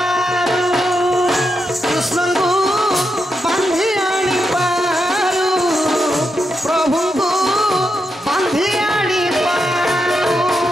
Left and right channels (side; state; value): both; normal; correlation 0.85